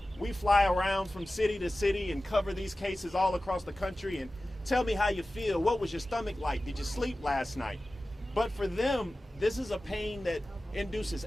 We fly around from city to city and cover these cases all across the country and tell me how you feel. What was your stomach like? Did you sleep last night? But for them, this is a pain that induces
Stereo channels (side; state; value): both; normal; correlation 0.96